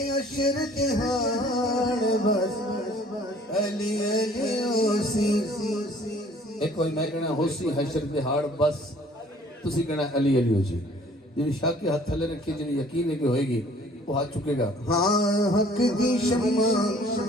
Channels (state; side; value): normal; both; correlation 0.55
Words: حشر جہاں بس علی علیو سی۔ ایک کوئی میں کہنا ہو سی حشر دہاڑ بس، تسی کہنا علی علی ہو جی، جنہی شاہ کے ہاتھ تھلے رکھے، جنہی یقین ہے کہ ہوئے گی وہ ہاتھ چکے گا۔ ہاں حق دی شمع